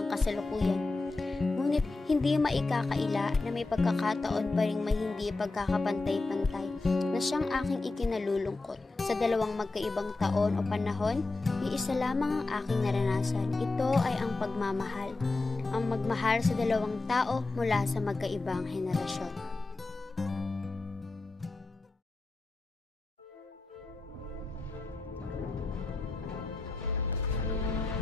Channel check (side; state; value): right; quieter; 3.4 dB